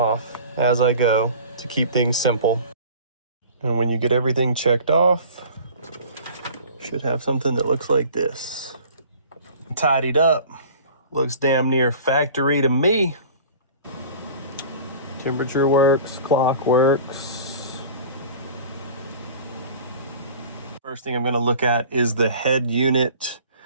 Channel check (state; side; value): inverted; both; correlation -0.44